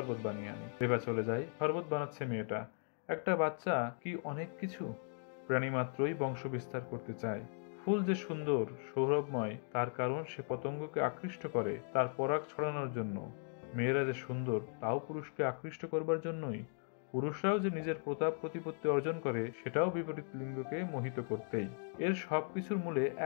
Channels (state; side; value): silent; right; 53 dB below the other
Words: বানিয়ে আনি। রেবা চলে যায়। শরবত বানাচ্ছে মেয়েটা। একটা বাচ্চা কি অনেক কিছু! প্রাণী মাত্রই বংশ বিস্তার করতে চায়। ফুল যে সুন্দর, সৌরভময়, তার কারণ সে পতঙ্গকে আকৃষ্ট করে তার পরাগ ছড়ানোর জন্য। মেয়েরা যে সুন্দর, তাও পুরুষকে আকৃষ্ট করবার জন্যই। পুরুষরাও যে নিজের প্রতাপ প্রতিপত্তি অর্জন করে, সেটাও বিপরীত লিঙ্গকে মোহিত করতেই। এর সবকিছুর মূলে